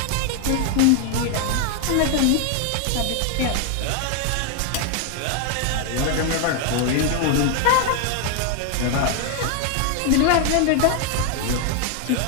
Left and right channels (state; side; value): different; both; correlation 0.00